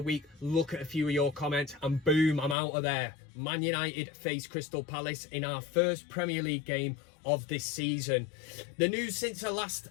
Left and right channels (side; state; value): right; drops out; at 2.6 s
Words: week. Look at a few of your comments and boom, I'm out of there. ManUtd face Crystal Palace in our first Premier League game of this season. The news since I last